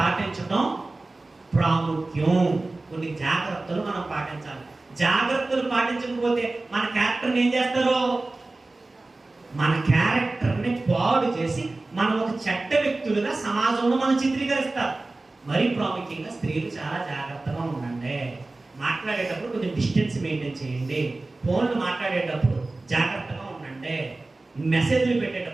ప్రాముఖ్యం. కొన్ని జాగ్రత్తలు మనం పాటించాలి. జాగ్రత్తలు పాటించకపోతే మన క్యారెక్టర్ని ఏం చేస్తారు? మన క్యారెక్టర్ని పాడు చేసి మనం ఒక చెడ్డ వ్యక్తులుగా సమాజంలో మనం చిత్రీకరిస్తారు. మరీ ప్రాముఖ్యంగా స్త్రీలు చాలా జాగ్రత్తగా ఉండండి. మాట్లాడేటప్పుడు కొంచెం డిస్టెన్స్ మెయింటైన్ చేయండి. ఫోన్లు మాట్లాడేటప్పుడు జాగ్రత్తగా ఉండండి. మెసేజ్లు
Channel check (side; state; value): left; quieter; 3.1 dB